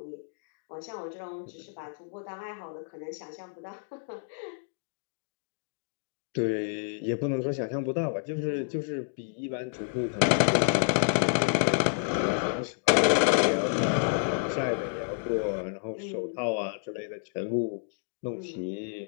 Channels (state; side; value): silent; right; digital silence